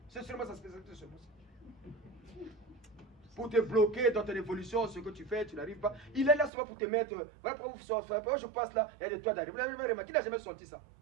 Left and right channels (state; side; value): drops out; left; at 6.5 s